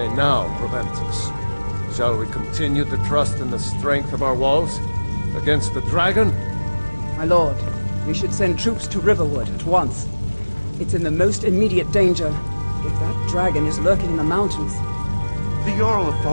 now, Proventus? Shall we continue to trust in the strength of our walls against the dragon? My lord, we should send troops to Riverwood at once. It's in the most immediate danger. If that dragon is lurking in the mountains... The Jarl of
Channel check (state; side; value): inverted; both; correlation -1.00